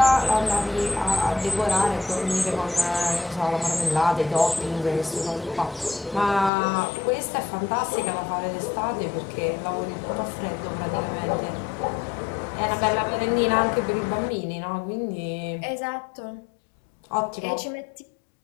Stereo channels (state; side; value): drops out; right; at 6.5 s